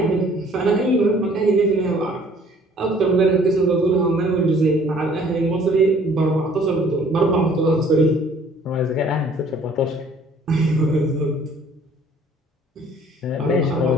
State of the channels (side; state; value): both; normal; correlation 0.56